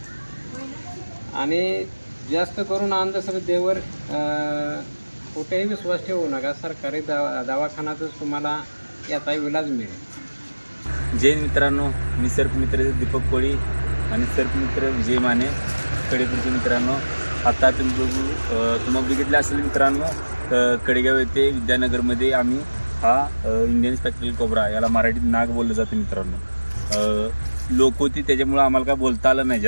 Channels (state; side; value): inverted; both; correlation -1.00